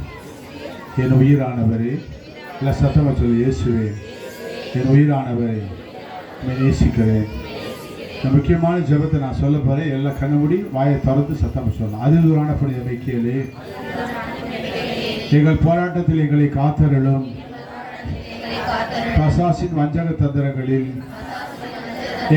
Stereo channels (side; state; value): both; identical; correlation 1.00